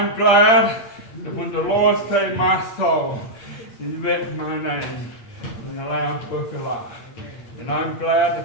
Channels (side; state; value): right; late; 8.6 ms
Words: glad that when the Lord saved my soul, He written my name in the Lamb's Book of Life. And I'm glad